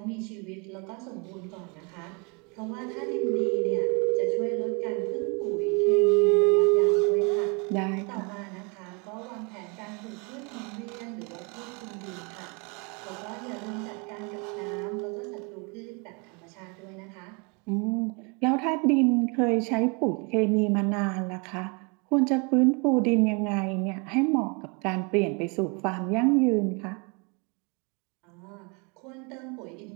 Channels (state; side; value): quieter; left; 32.4 dB